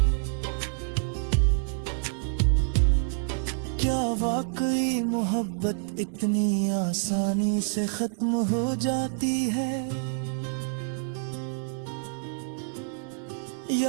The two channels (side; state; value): left; silent; digital silence